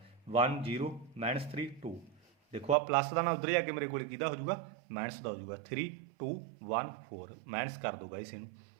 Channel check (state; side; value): drops out; left; at 2.8 s